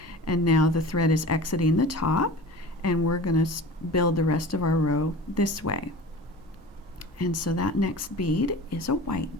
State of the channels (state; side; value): normal; both; correlation 0.37